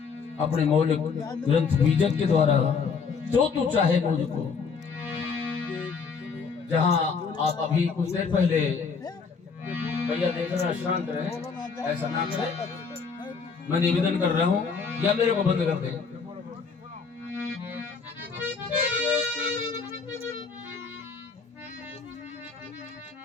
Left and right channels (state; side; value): quieter; right; 5.4 dB